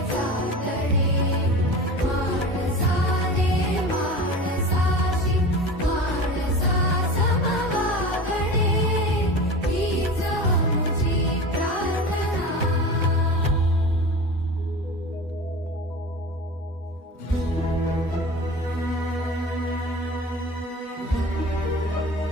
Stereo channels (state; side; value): normal; both; correlation 0.33